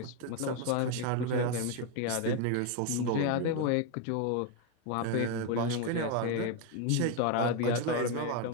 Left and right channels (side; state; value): both; different; correlation 0.02